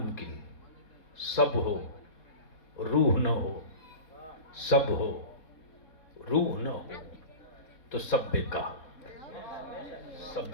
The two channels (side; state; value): right; late; 3.7 ms